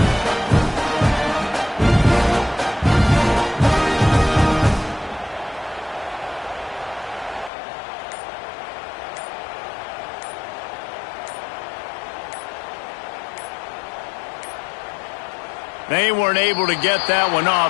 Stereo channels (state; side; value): drops out; right; at 7.5 s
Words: They weren't able to get that one